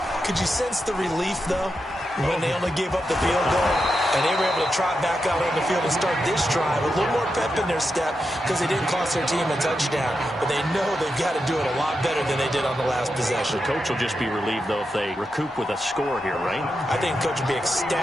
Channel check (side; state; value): both; normal; correlation 0.87